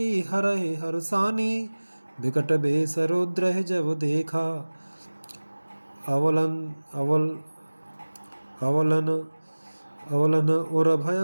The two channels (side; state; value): both; inverted; correlation -1.00